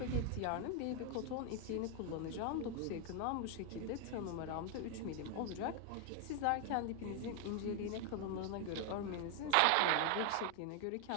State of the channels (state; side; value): different; both; correlation 0.00